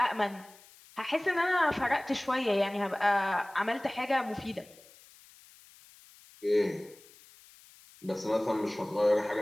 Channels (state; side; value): noise; left; hiss, 24 dB below the sound